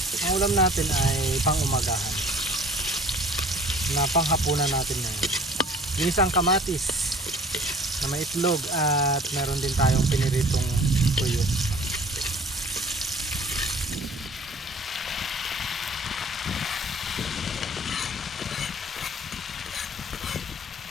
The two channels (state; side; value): normal; both; correlation 0.50